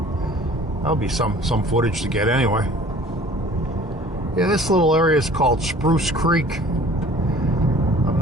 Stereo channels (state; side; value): normal; both; correlation 0.49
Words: That'll be some footage to get anyway. Yeah, this little area is called Spruce Creek. I'm